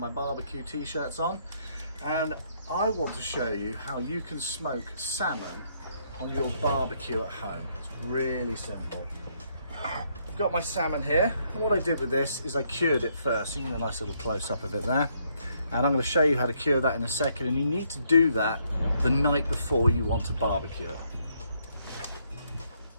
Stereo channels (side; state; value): both; inverted; correlation -0.72